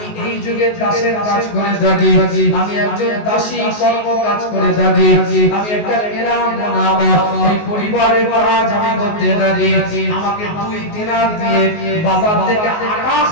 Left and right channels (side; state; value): right; late; 19 ms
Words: এই যুগে দাসের কাজ করে থাকি, আমি একজন দাসী কর্ম কাজ করে থাকি, আমি একটা কেরাম নাম এই পরিবারের কাজ আমি করতে থাকি। আমাকে 2 দিনার দিয়ে বাজার থেকে আটা